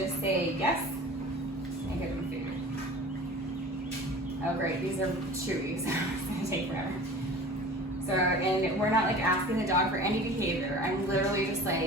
say yes and give them food. Oh great, these are chewy, so it's going to take forever. So, and we're not asking the dog for any behavior. I'm literally just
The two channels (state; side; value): normal; both; correlation 0.40